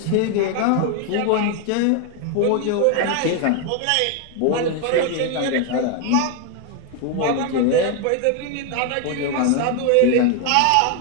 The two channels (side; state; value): both; different; correlation 0.01